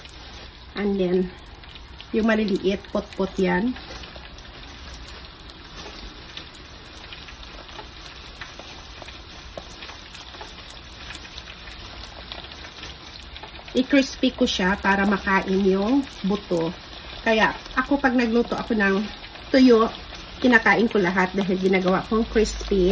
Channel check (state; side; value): identical; both; correlation 1.00